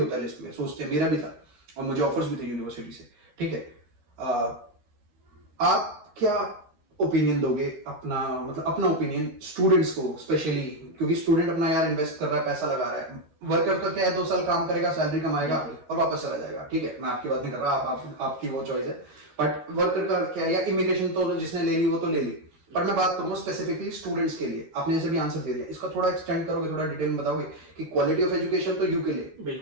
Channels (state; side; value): late; left; 13 ms